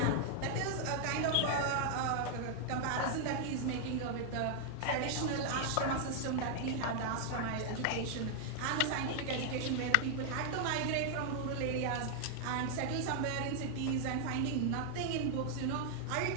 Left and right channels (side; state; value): both; different; correlation 0.00